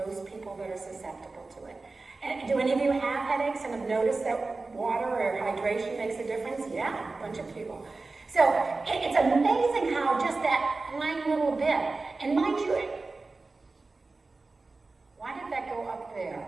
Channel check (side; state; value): left; quieter; 3.6 dB